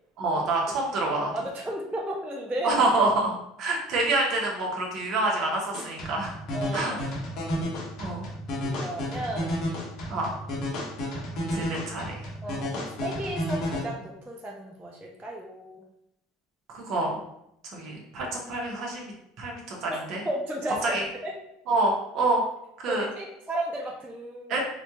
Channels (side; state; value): both; normal; correlation 0.46